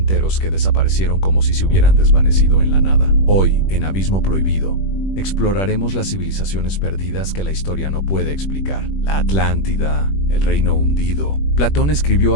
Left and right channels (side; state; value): right; late; 21 ms